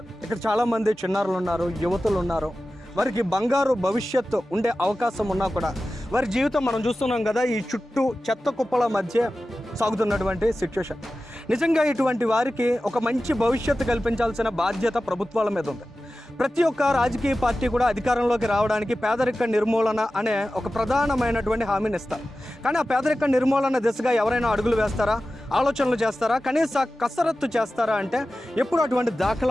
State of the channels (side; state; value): both; normal; correlation 0.94